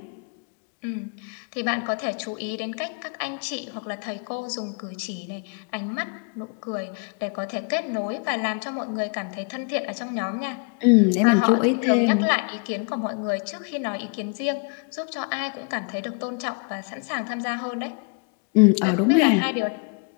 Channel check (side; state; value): right; quieter; 37.6 dB